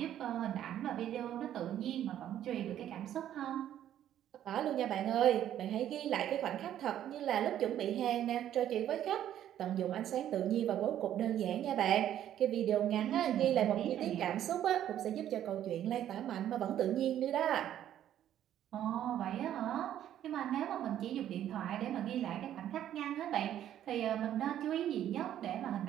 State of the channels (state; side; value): quieter; left; 11.2 dB